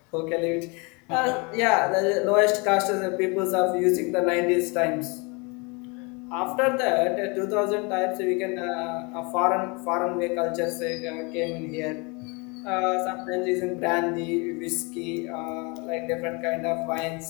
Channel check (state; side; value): quieter; right; 30.0 dB